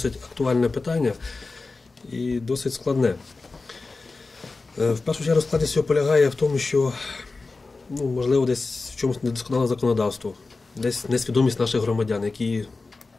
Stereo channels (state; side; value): quieter; right; 3.7 dB